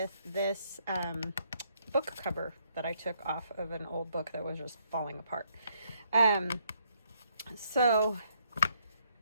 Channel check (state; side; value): inverted; both; correlation -0.72